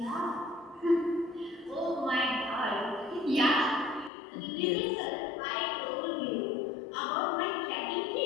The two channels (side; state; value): right; drops out; at 4.1 s